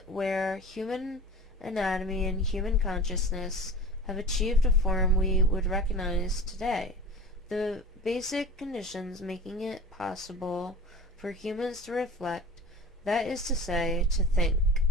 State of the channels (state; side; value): normal; both; correlation 0.36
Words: where human anatomy and human consciousness have achieved a form we would recognize today. The basic conditions making it possible for humans to reflect, that is to say, to think,